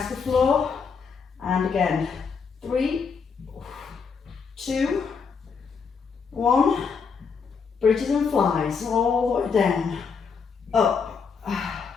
to the floor. And again, 3, 2, 1, bridges and flies, all the way down, up.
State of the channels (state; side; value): quieter; right; 5.6 dB